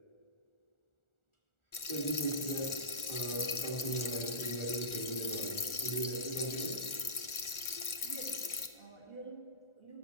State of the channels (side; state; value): right; late; 1.4 ms